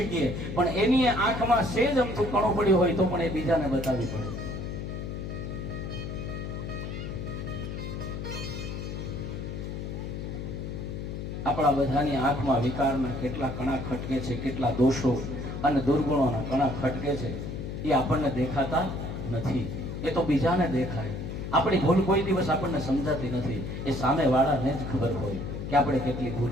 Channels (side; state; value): left; noise; hum, 6 dB below the sound